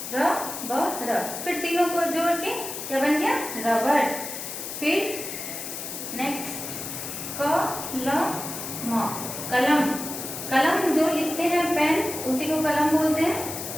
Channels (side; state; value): left; noise; hiss, 7 dB below the sound